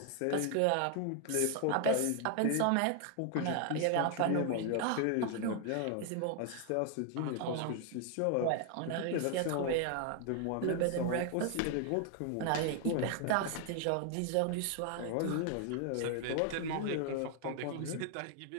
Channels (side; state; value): both; different; correlation 0.00